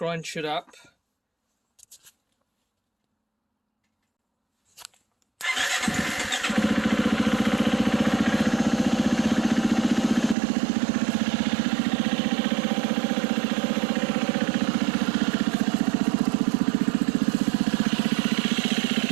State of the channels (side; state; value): left; drops out; at 10.4 s